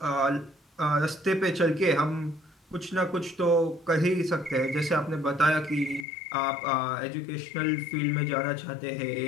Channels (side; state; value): right; drops out; at 6.1 s